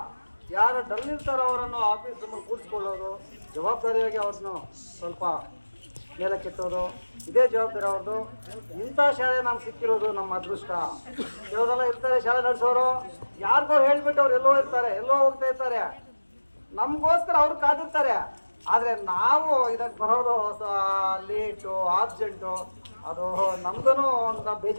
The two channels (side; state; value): both; inverted; correlation -1.00